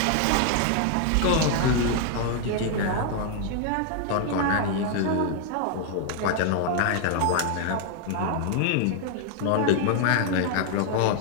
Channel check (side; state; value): both; different; correlation 0.00